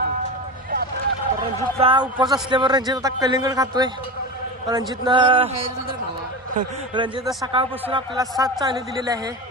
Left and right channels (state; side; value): normal; both; correlation 0.25